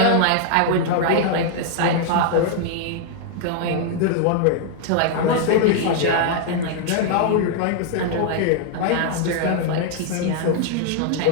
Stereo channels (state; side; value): different; both; correlation 0.00